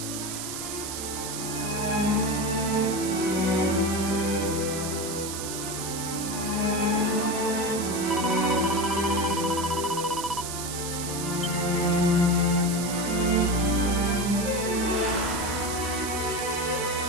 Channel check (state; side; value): noise; right; hiss, 6 dB below the sound